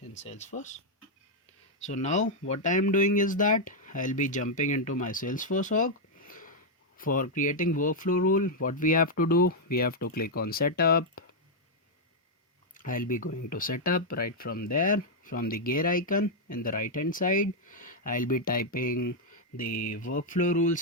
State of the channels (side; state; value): both; normal; correlation -0.02